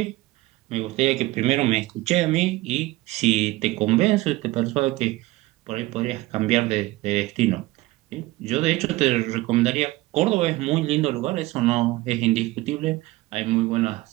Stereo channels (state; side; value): quieter; left; 18.8 dB